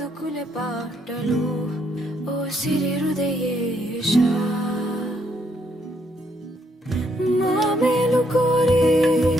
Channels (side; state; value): both; normal; correlation 0.73